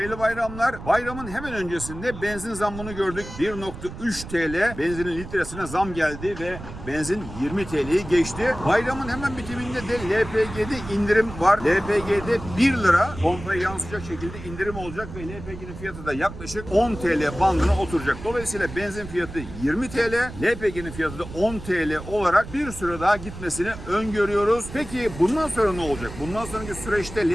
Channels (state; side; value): noise; right; rumble, 12 dB below the sound